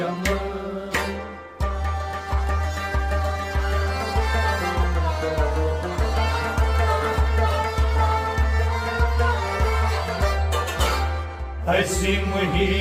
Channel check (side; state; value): both; identical; correlation 1.00